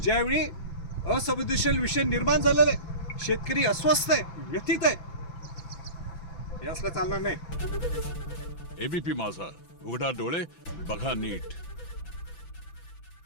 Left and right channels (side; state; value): right; late; 6.0 ms